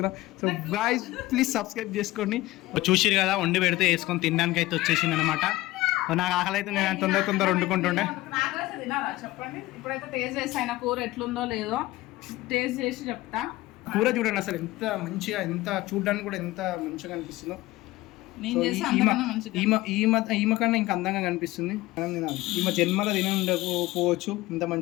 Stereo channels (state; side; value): quieter; right; 18.2 dB